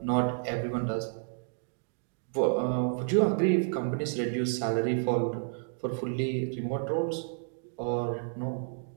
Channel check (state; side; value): silent; left; digital silence